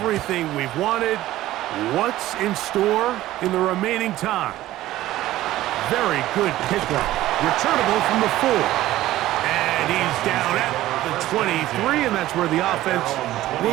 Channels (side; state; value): left; quieter; 15.2 dB